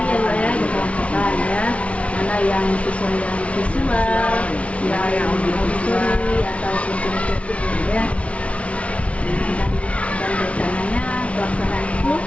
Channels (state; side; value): late; right; 0.063 ms